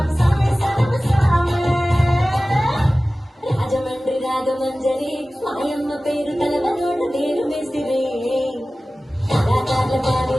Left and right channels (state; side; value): normal; both; correlation 0.97